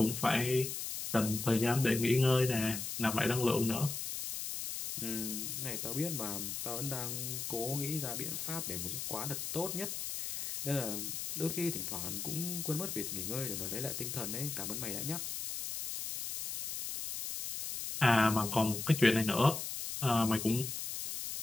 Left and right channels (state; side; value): noise; left; hiss, 5 dB below the sound